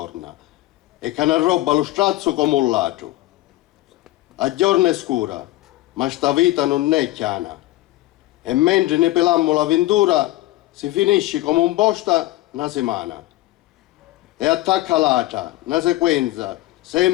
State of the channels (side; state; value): right; quieter; 17.0 dB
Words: E che ne roba lo strazzo come un ladro. A giorno è scura, ma sta vita non è chiana. E mentre ne pelammo l'avventura, si finisce come un posta una settimana. E attacca l'altra, una sequenza,